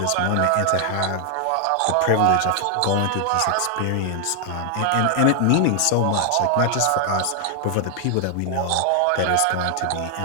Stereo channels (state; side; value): different; both; correlation 0.00